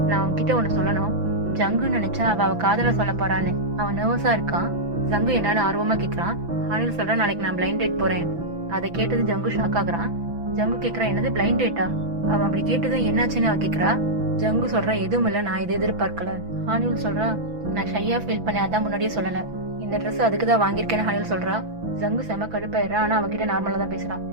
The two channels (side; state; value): left; late; 6.0 ms